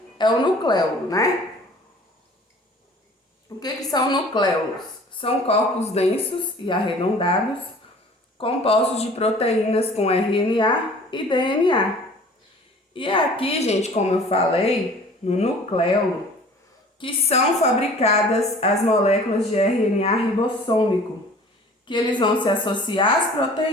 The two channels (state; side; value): normal; both; correlation 0.48